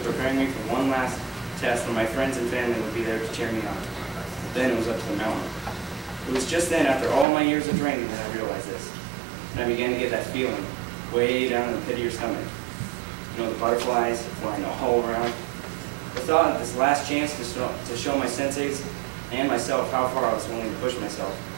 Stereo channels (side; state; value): left; drops out; at 7.2 s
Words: preparing me for one last test where my friends and family would be there to cheer me on. Then it was up to the mountain. It was just then, after all my years of training, that I realized this. And I began to get that feeling way down in the pit of your stomach. You know, the butterflies flying all around. The thought of this last chance to show my senseis and myself how far I was willing to push myself